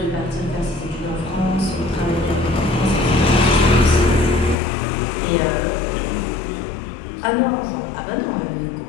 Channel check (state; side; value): drops out; right; at 4.5 s